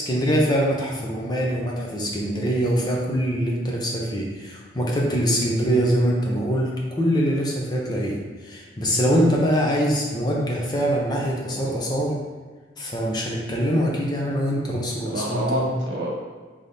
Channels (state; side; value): normal; both; correlation 0.66